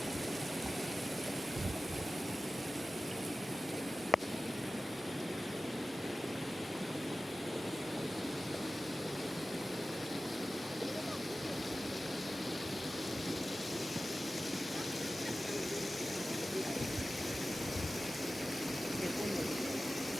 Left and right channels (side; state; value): both; normal; correlation 0.95